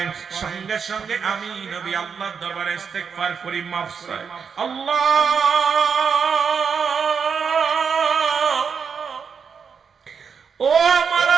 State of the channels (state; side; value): quieter; left; 6.3 dB